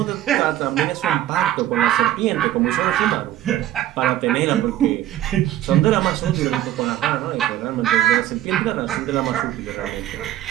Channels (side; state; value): left; quieter; 13.2 dB